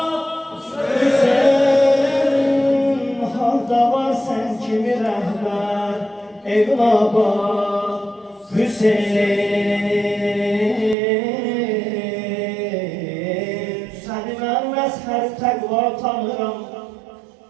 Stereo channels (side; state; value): left; drops out; at 11.0 s